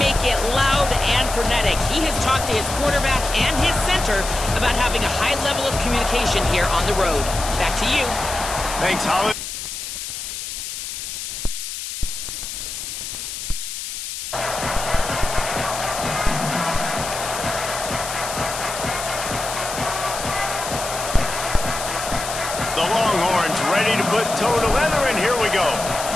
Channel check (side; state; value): left; noise; hiss, 7 dB below the sound